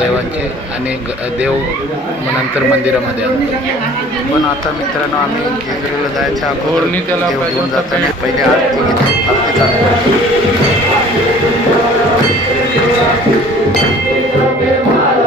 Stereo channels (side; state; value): both; normal; correlation 0.50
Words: आणि देव नंतर मंदिरामध्ये आणतो। पण आता मित्रांनो, आम्ही जेजुरीला जायच्या अगोदर त्याला घेऊन जाताना पहिले आरती घेतो, आरती चालू करतो।